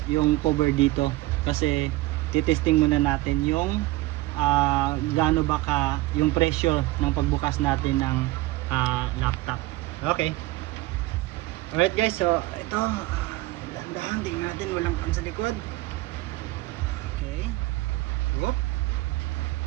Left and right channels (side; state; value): left; quieter; 19.0 dB